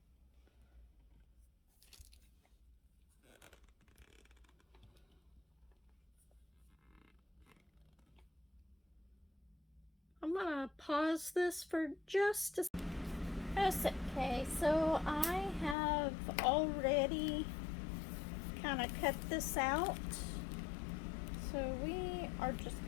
I'm gonna pause this for just a second. Okay, so I have already kind of cut this out. So we are just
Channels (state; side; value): drops out; right; at 15.8 s